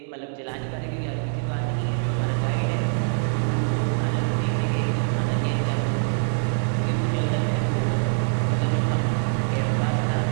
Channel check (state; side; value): silent; left; 62 dB below the other